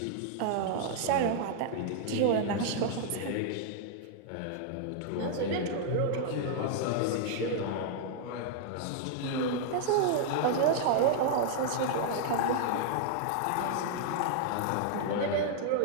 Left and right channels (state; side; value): different; both; correlation -0.01